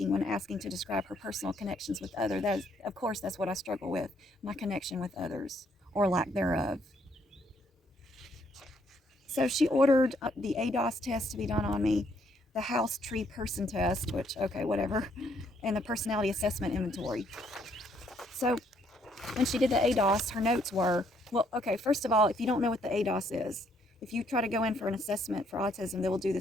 when asking to describe her personal connections with others. Of course, that's what I struggle with, my connection with others, or lack thereof. So she ordered the ADOS test to be done on me, the house tree person test, which, okay, whatever, and the personality assessment inventory. So when she did the ADOS, her notes were, well, okay, first of all, if you don't know what the ADOS is, if you try to go in for an assessment for autism, they will do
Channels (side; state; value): both; normal; correlation 0.70